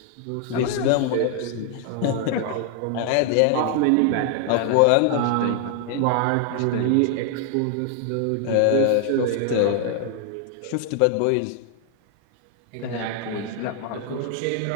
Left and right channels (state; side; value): different; both; correlation 0.00